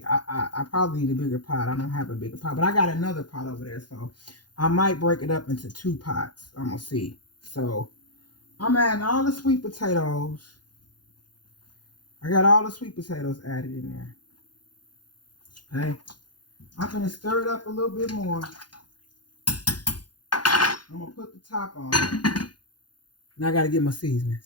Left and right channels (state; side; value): late; right; 0.70 ms